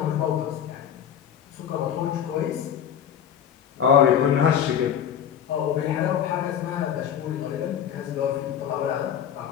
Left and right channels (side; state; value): right; quieter; 9.2 dB